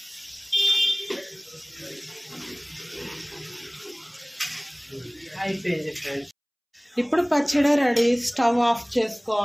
అయిపోయింది ఫ్రెండ్స్. ఇప్పుడు పచ్చడి రెడీ. స్టవ్ ఆఫ్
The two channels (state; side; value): identical; both; correlation 1.00